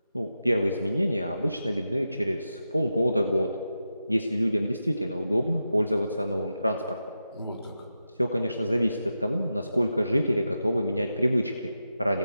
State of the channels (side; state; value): both; inverted; correlation -0.89